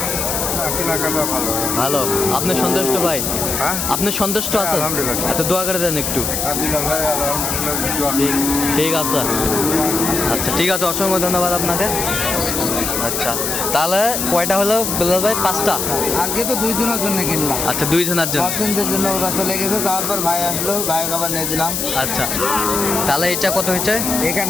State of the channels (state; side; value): noise; left; hiss, 1 dB below the sound